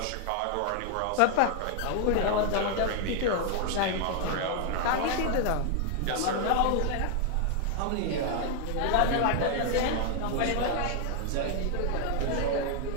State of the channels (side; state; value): both; different; correlation 0.00